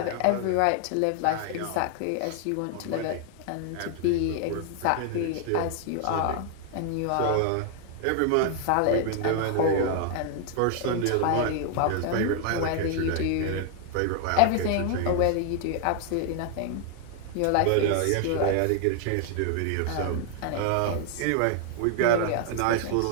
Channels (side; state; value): both; different; correlation 0.00